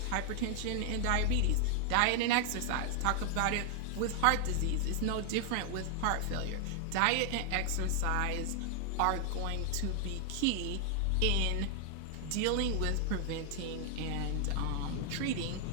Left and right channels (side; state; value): both; different; correlation 0.00